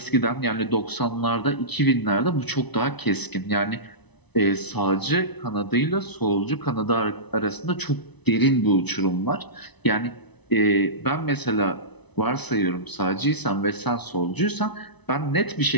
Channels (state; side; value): late; right; 0.99 ms